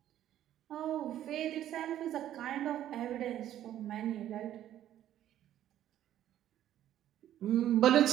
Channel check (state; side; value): quieter; left; 11.9 dB